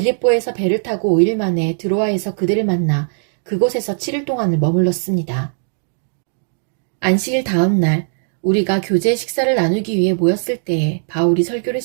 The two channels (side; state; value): left; silent; digital silence